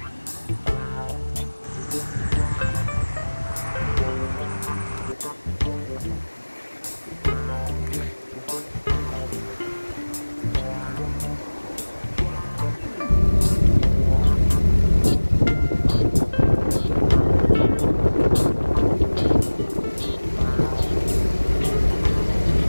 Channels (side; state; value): both; inverted; correlation -1.00